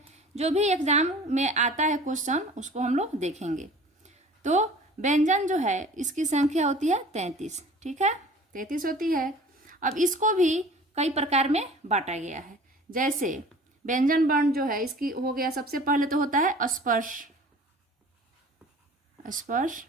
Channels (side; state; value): both; normal; correlation 0.45